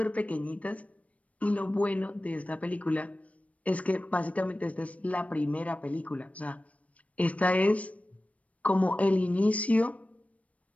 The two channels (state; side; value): late; right; 0.066 ms